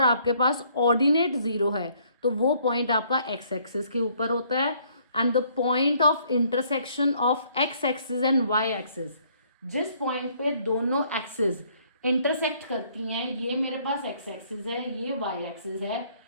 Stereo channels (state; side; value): inverted; both; correlation -0.64